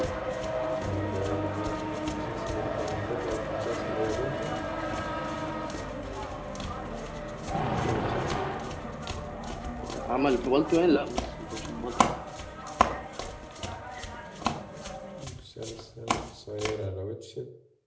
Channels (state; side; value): identical; both; correlation 1.00